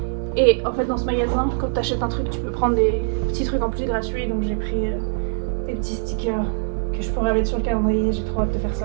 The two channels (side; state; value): left; silent; digital silence